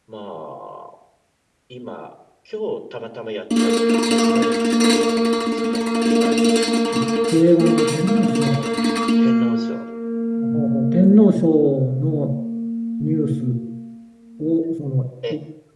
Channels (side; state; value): both; identical; correlation 1.00